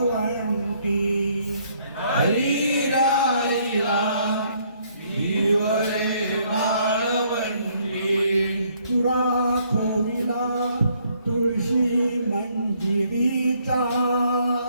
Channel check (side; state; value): both; inverted; correlation -0.67